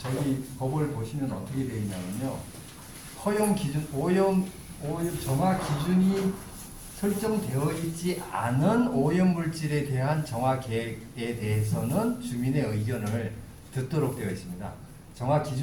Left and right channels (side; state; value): both; identical; correlation 1.00